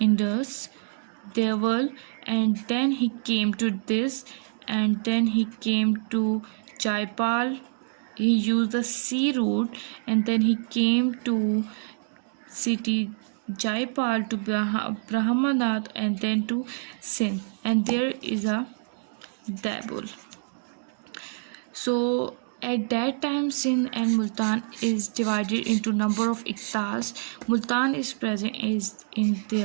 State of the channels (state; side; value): silent; left; digital silence